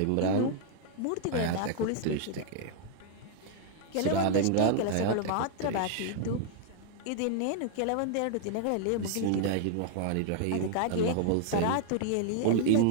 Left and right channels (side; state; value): both; different; correlation -0.01